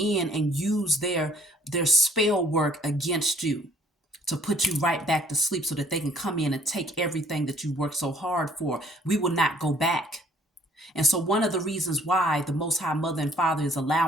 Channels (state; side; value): normal; both; correlation 0.59